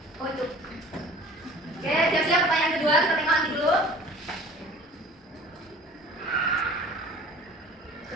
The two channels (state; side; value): normal; both; correlation 0.46